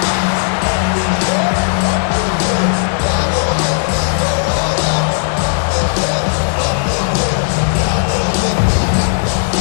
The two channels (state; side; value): silent; right; digital silence